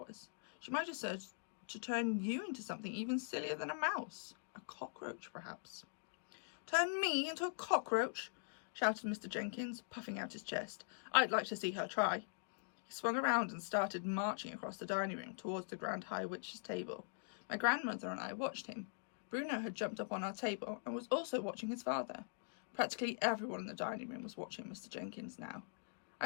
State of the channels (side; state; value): right; silent; digital silence